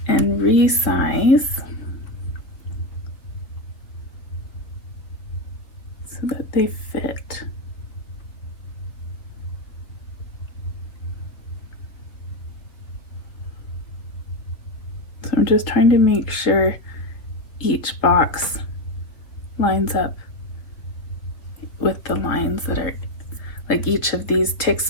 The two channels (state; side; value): late; right; 3.2 ms